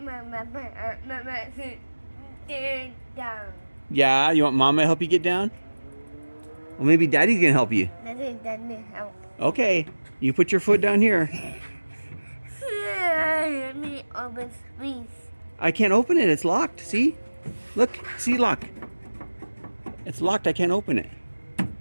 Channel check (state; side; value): inverted; both; correlation -1.00